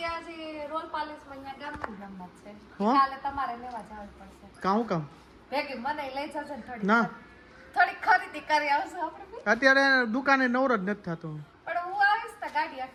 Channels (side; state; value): both; identical; correlation 1.00